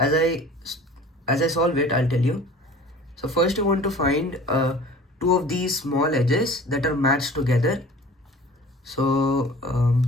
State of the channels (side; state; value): both; normal; correlation 0.44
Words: I solve it, I'll tell you. So first you want to find 2 of these small edges that are matched together. So